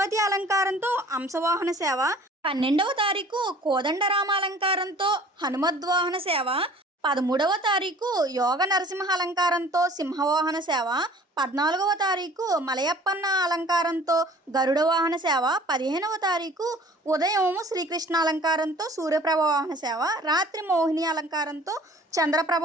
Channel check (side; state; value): both; normal; correlation 0.49